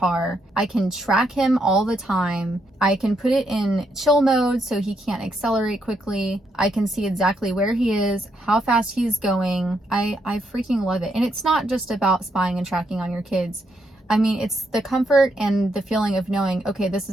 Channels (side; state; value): both; normal; correlation 0.78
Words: I can track him all the time. I can put it in chill mode so he can't accelerate quickly. I can see exactly where he is, how fast he's going. I freaking love it. And it's not just about spying and tracking on your kids. I mean, it's the comfort and the feeling of knowing, okay, this